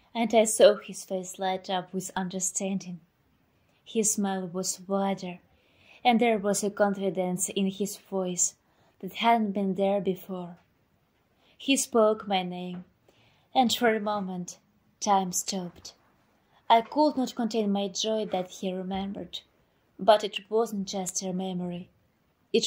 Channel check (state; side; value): identical; both; correlation 1.00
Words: and I saw his face light up with understanding. His smile was wider, and there was a confidence in his voice that hadn't been there before. He spoke my name, and for a moment time stopped. I could not contain my joy that he remembered, but it wasn't just a memory.